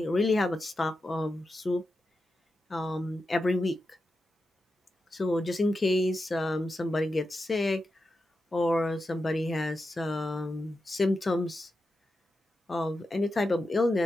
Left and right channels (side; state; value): both; normal; correlation 0.89